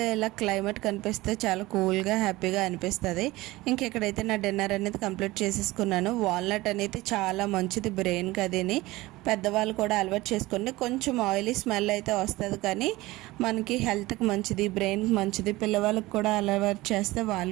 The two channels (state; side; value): quieter; left; 19.5 dB